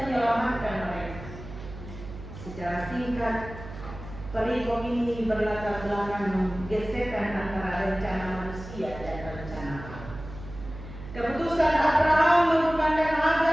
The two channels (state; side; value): noise; right; hum, 13 dB below the sound